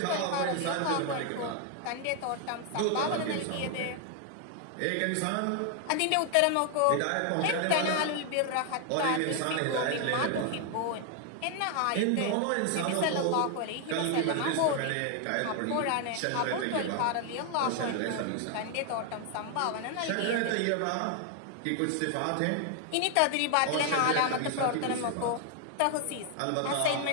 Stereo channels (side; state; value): both; different; correlation 0.00